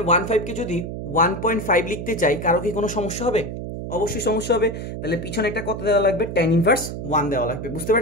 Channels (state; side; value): noise; right; hum, 7 dB below the sound